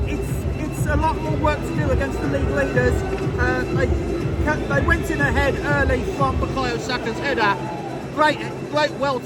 it's a lot more work to do against the league leaders. They went in ahead early from Bukayo Saka's header. Great, well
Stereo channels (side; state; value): both; identical; correlation 1.00